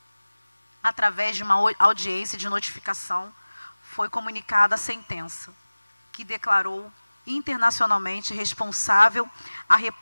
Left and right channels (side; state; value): both; inverted; correlation -1.00